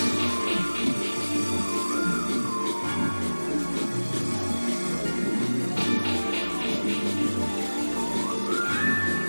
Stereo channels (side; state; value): both; inverted; correlation -1.00